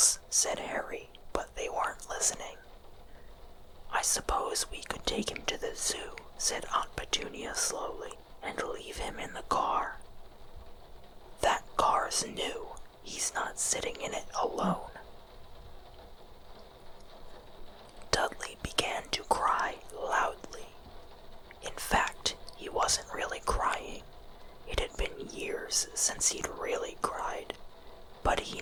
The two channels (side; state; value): both; identical; correlation 1.00